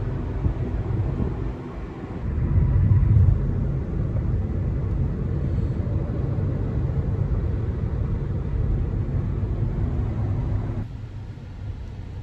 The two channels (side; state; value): both; identical; correlation 1.00